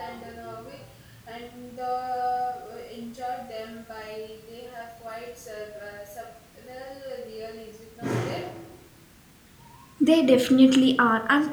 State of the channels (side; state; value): both; identical; correlation 1.00